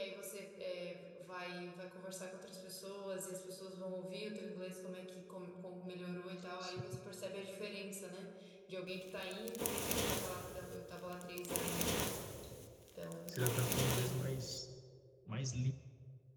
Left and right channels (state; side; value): identical; both; correlation 1.00